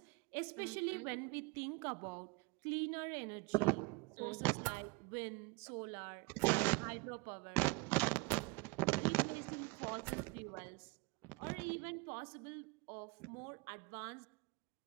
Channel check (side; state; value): left; quieter; 26.2 dB